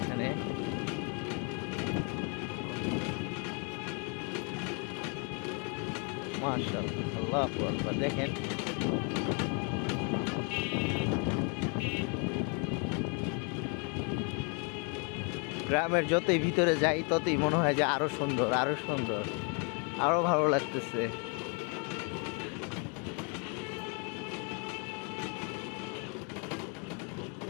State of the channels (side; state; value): right; quieter; 36.9 dB